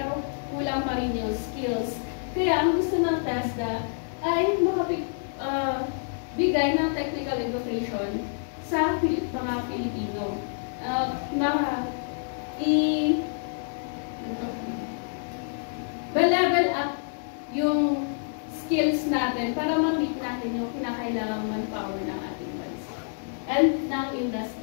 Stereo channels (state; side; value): silent; right; digital silence